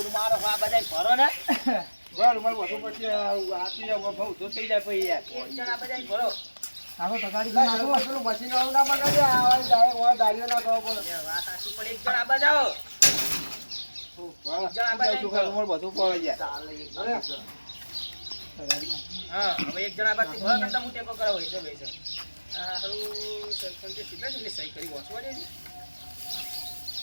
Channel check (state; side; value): inverted; both; correlation -1.00